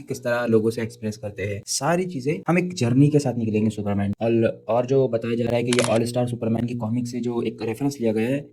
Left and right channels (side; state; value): both; identical; correlation 1.00